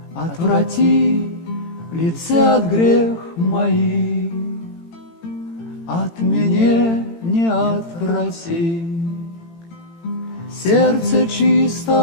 Отврати лице от грех моих, от меня не отврати. Сердце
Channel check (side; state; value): right; late; 18 ms